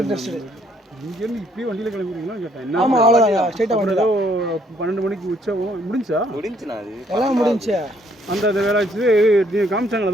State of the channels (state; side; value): normal; both; correlation 0.67